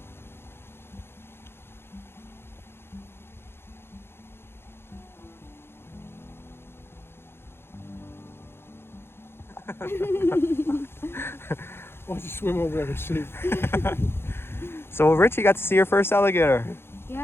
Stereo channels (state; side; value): late; right; 0.11 ms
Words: Why don't you swim over there and see? So Richie got to see your first alligator.